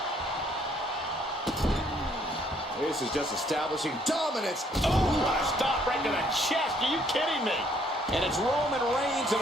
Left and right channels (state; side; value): normal; both; correlation 0.65